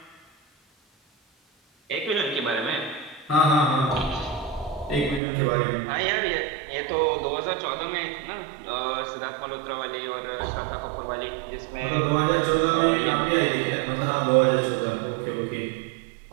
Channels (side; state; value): left; drops out; at 5.2 s